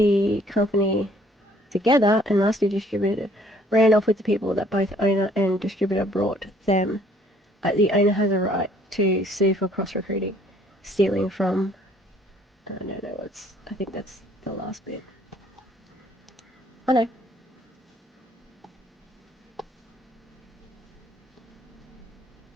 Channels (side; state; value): both; normal; correlation 0.60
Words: company together and master distributor ran off with the people that both owner and distributor brought them, the owner has a right to sue for cross-recruiting, stealing from, I think that's the last bit. Oh no.